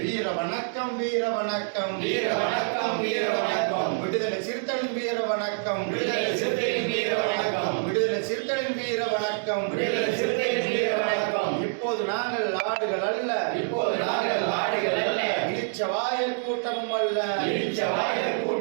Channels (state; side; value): silent; left; 61 dB below the other